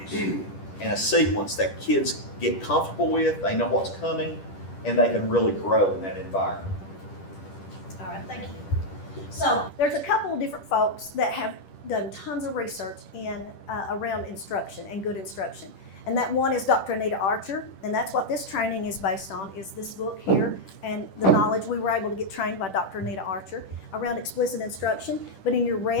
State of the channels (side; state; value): right; late; 10 ms